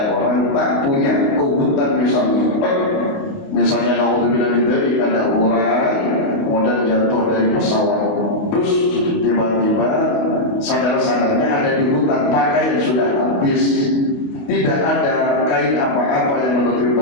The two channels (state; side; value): late; right; 29 ms